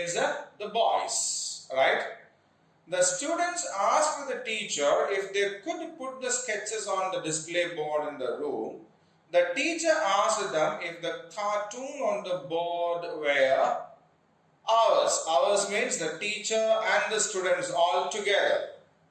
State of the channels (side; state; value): both; identical; correlation 1.00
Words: the boys, right? The students asked the teacher if they could put the sketches on the display board in the room. The teacher asked them if the cartoon on the board were ours. Ours means the teacher and the students all together.